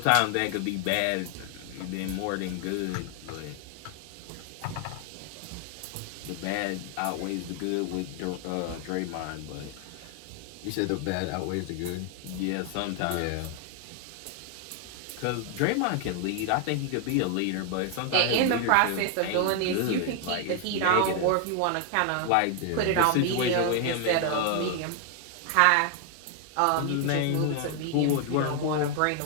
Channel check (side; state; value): both; different; correlation 0.00